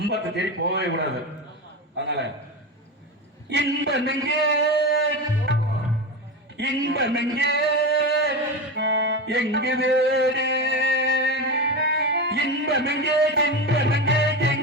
தேடி போகவே கூடாது. அதனால இன்பமெங்கே இன்பமெங்கே எங்கு வேறு இன்பமெங்கே இன்பமெங்கே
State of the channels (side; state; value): both; normal; correlation 0.20